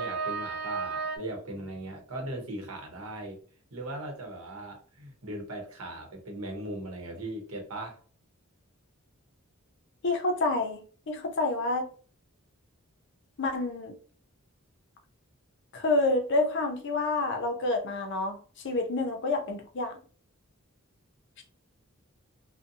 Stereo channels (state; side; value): normal; both; correlation -0.03